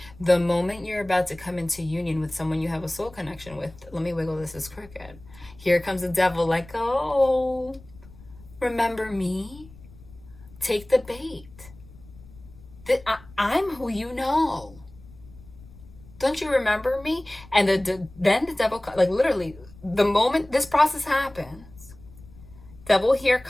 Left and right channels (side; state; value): left; noise; rumble, 21 dB below the sound